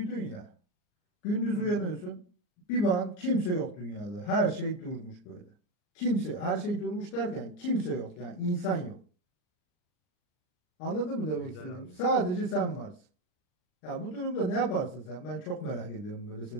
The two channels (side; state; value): right; late; 39 ms